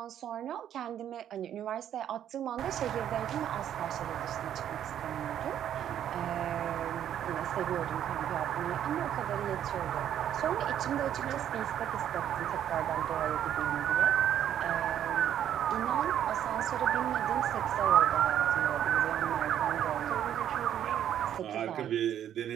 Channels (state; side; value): quieter; left; 10.3 dB